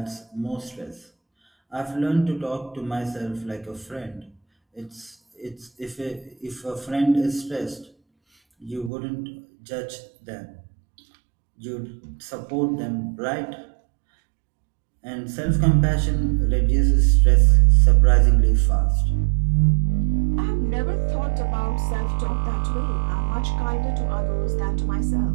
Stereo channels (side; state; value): left; drops out; at 8.9 s